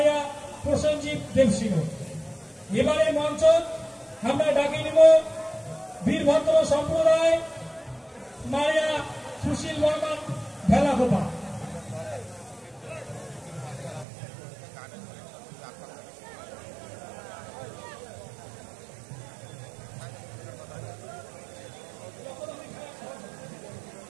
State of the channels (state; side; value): drops out; left; at 14.1 s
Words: প্রসেনজিৎ দেবসিংহ। এবারে মঞ্চ আমরা ডাকে নিব বীরভদ্র সম্প্রদায় মারিয়া সুশীল বর্মন ভেলাকোপা।